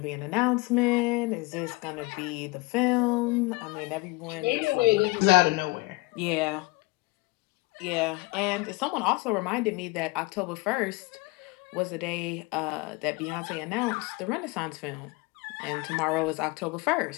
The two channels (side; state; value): right; quieter; 24.2 dB